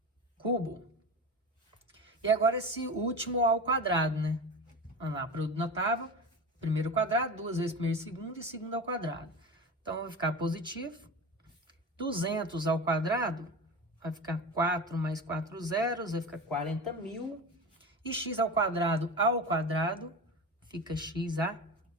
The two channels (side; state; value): both; normal; correlation 0.28